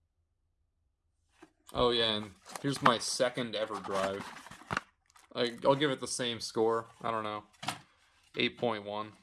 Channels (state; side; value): identical; both; correlation 1.00